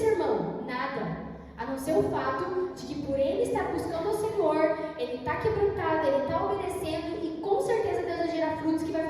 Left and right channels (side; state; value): both; identical; correlation 1.00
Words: irmão, nada. A não ser o fato de que por ele estar buscando o Senhor, ele está quebrantado, ele está obedecendo, e com certeza Deus vai gerar frutos que vai